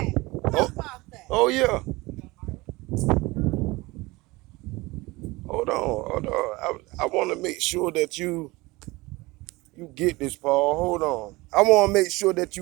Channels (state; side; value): quieter; left; 21.9 dB